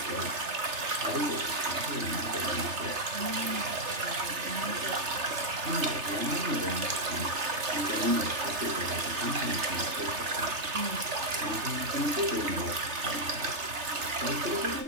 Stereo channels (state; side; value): late; left; 3.3 ms